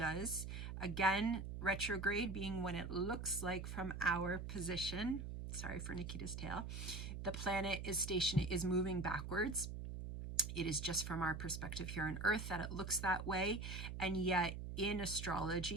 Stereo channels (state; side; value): noise; right; hum, 6 dB below the sound